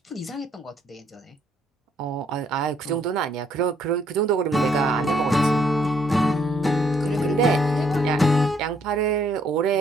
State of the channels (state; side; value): normal; both; correlation 0.69